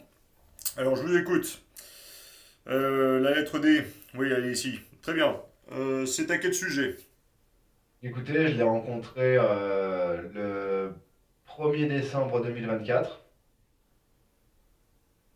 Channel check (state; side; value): identical; both; correlation 1.00